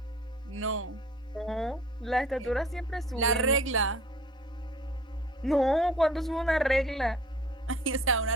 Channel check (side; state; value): both; normal; correlation 0.49